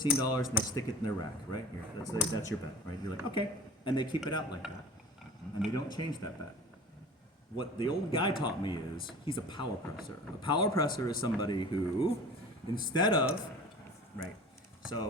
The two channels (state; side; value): normal; both; correlation 0.40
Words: and they stick it in their rack, right? Here, that's your bet, right? You're like, okay. And they keep it out like that. And they don't change that bet. What the old guy taught me is he's a power presser. A power presser is somebody who, instead of, right,